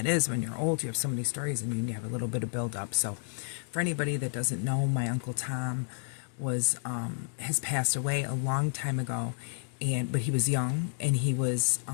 is when you're old. You have so many stories and you have a little bit of build up. So for anybody that doesn't know, my Uncle Tom has passed away a long time ago, but he was young and he was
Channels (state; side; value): silent; right; digital silence